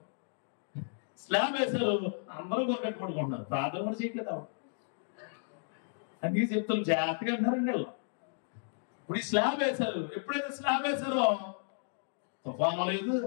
స్లాబ్ వేసారు, అందరూ కొరకట్టు పడుకుంటున్నారు. ప్రార్థన కూడా చేయట్లేదు. అందుకే చెప్తాను జాగ్రత్తగా అంటారండి వాళ్ళు. ఇప్పుడు ఈ స్లాబ్ వేశారు. ఎప్పుడైతే స్లాబ్ వేశారో తుఫాను లేదు,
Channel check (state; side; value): silent; right; digital silence